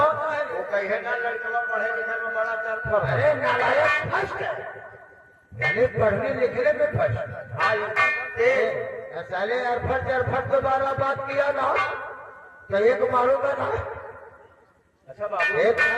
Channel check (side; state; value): both; identical; correlation 1.00